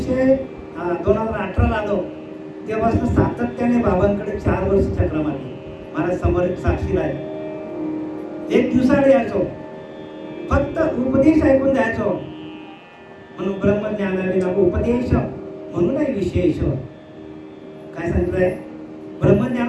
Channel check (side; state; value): both; identical; correlation 1.00